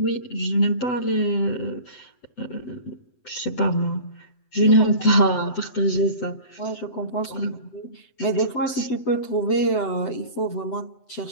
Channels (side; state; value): right; late; 7.9 ms